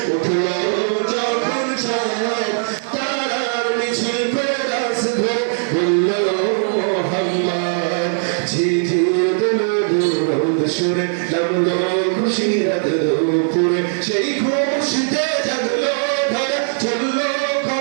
উঠলো যখন চাঁদ, তারার মিছিল পেরাস ধরে বলল মোহাম্মদ। ঝিঝির দিলো রোদ সুরে নামলো খুশির দুপুরে, সেই খুশিতে জাগলো ধরা চললো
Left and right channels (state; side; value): silent; left; digital silence